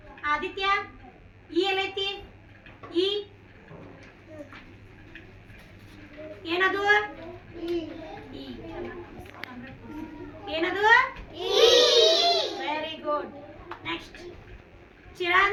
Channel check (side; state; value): both; identical; correlation 1.00